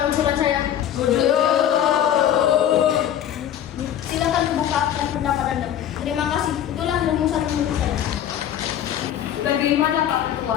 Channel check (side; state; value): right; quieter; 10.5 dB